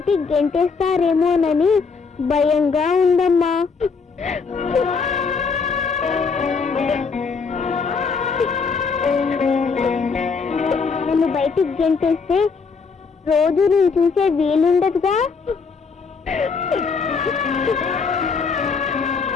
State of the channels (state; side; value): quieter; right; 5.1 dB